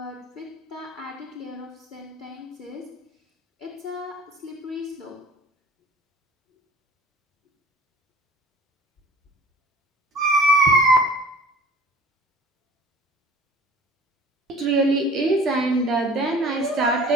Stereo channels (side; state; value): both; normal; correlation 0.47